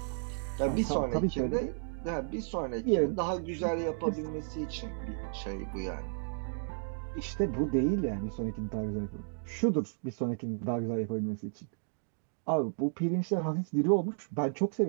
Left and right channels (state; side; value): silent; left; digital silence